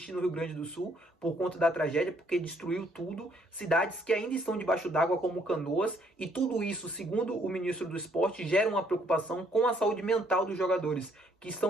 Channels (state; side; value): normal; both; correlation 0.67